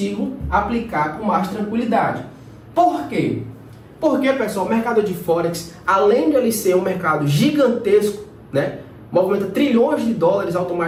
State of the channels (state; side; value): identical; both; correlation 1.00